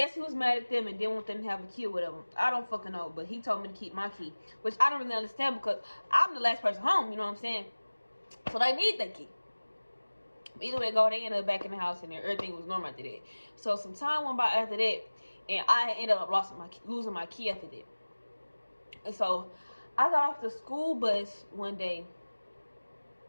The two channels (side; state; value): both; inverted; correlation -1.00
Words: he was mad at them and didn't want them to have a key or whatever. I don't fucking know, but he told me to keep my key, which I don't really understand because I'm the last person home, you know what I'm saying? So they need that key. Either way go, they ended up back in the house and everything was normal after that. So some time went by after that, and I ended up losing my key after that. And so I got off the school bus one day,